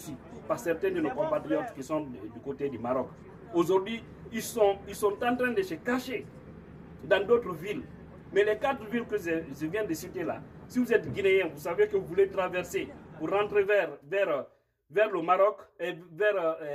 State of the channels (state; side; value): identical; both; correlation 1.00